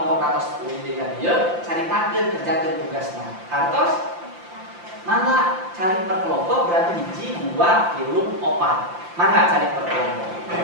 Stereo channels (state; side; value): late; left; 5.8 ms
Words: atas UID ka dieu caritakeun kerjakeun tugasna. Kartos mangga cari per kelompok berarti hiji, 2, 3, 4. Mangga cari per kelompok.